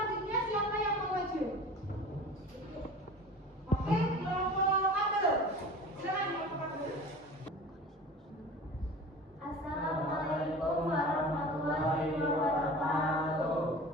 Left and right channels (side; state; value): both; normal; correlation 0.38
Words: siapa yang mau maju? Oke, kelompok Abdul. Silakan kelompok Abdul. Assalamualaikum warahmatullahi wabarakatuh.